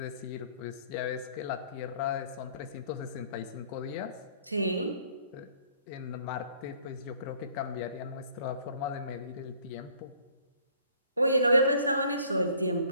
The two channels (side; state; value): both; inverted; correlation -0.57